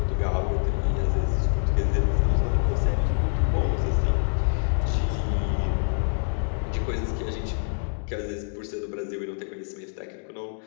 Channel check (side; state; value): right; silent; 61 dB below the other